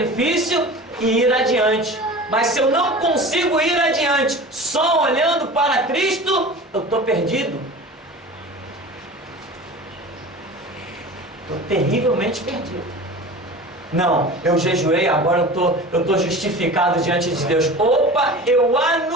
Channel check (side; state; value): both; normal; correlation 0.36